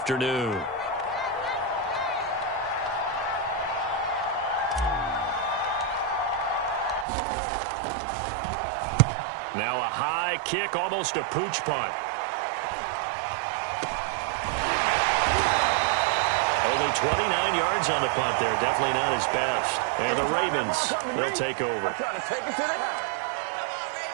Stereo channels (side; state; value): left; drops out; at 7.1 s